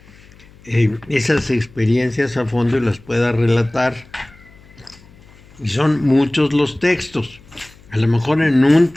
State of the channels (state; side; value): noise; left; hum, 25 dB below the sound